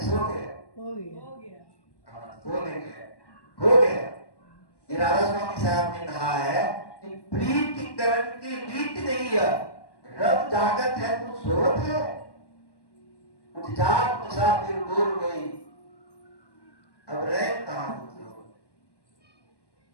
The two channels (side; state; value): right; late; 1.1 ms